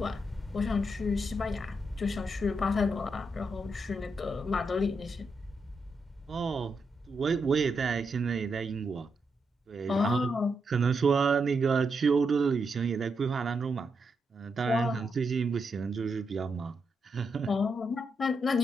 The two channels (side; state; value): both; normal; correlation 0.82